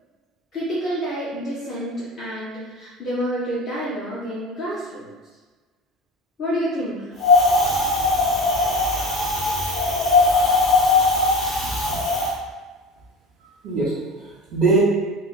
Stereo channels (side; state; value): both; normal; correlation 0.30